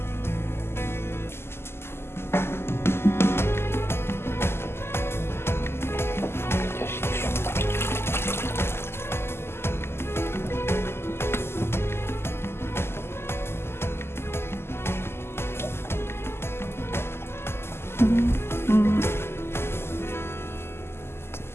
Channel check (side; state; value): right; late; 0.12 ms